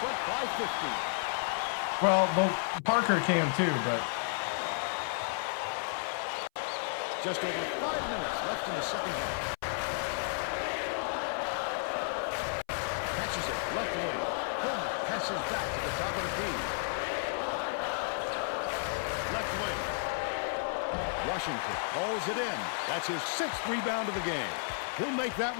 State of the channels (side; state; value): right; silent; 56 dB below the other